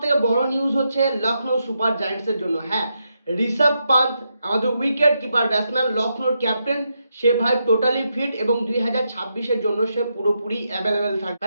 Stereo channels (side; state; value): both; inverted; correlation -0.83